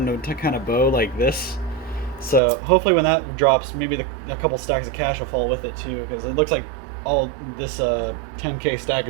to kind of bow like this. So hopefully when that drops, maybe a couple stacks of cash will fall with it too, because it looks like all this 10K stack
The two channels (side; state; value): left; drops out; at 2.4 s